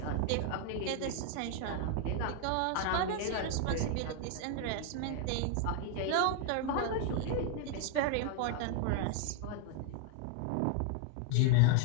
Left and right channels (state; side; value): different; both; correlation 0.00